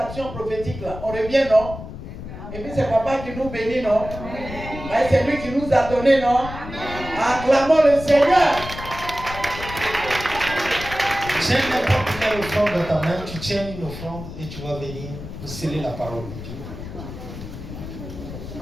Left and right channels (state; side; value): noise; left; rumble, 11 dB below the sound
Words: prophétique là, on revient, non? Et puis c'est papa qui nous bénit, non? Et c'est lui qui nous a donné, non? Acclamons le Seigneur. J'ai n'importe mets l'offrande dans ta main, tu tiens une offrande et tu vas venir pour sceller la parole de Dieu.